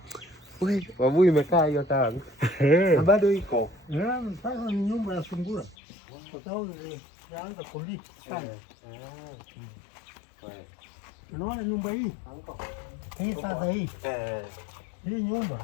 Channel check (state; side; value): drops out; right; at 5.8 s